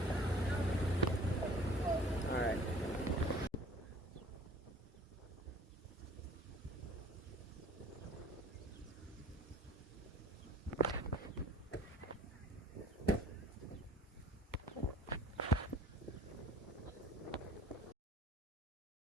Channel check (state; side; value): normal; both; correlation 0.50